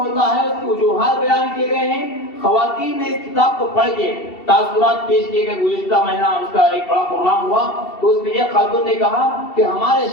ہے اس کی وجوہات بیان کیے گئے ہیں۔ خواتین نے اس کتاب کو پڑھ کے تاثرات پیش کیے گئے۔ گزشتہ مہینہ اس کا ایک بڑا پروگرام ہوا تو اس میں ایک خاتون نے کہا کہ ہمارے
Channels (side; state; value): right; late; 2.7 ms